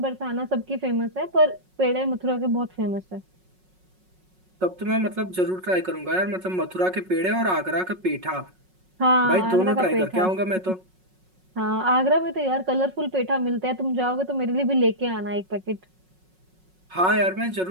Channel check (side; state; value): left; late; 5.4 ms